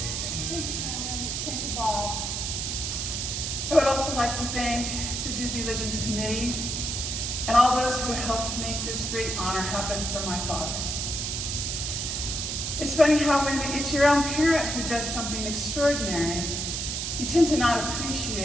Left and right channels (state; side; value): noise; right; hiss, 2 dB below the sound